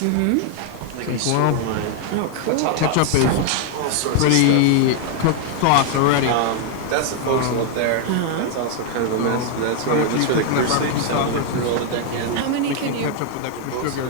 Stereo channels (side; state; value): both; different; correlation 0.00